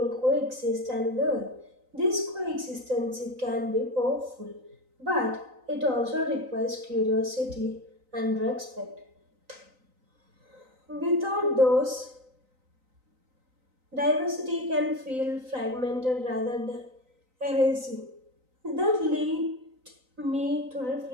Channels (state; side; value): late; left; 3.9 ms